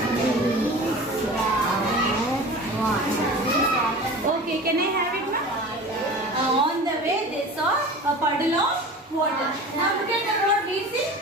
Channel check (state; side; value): normal; both; correlation 0.36